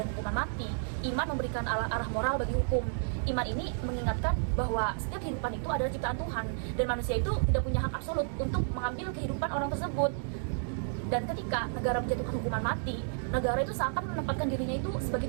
hukuman mati, iman memberikan arah moral bagi hukum. Iman ini mengingatkan bahwa setiap kehidupan itu adalah ciptaan Tuhan dan manusia itu tidak punya hak absolut untuk mengambil kehidupan orang tersebut. Dan ketika negara menjatuhkan hukuman mati, negara itu seakan menempatkan dirinya itu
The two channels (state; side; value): silent; left; digital silence